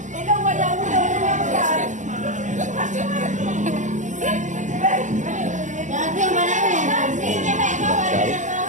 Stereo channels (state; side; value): late; left; 0.36 ms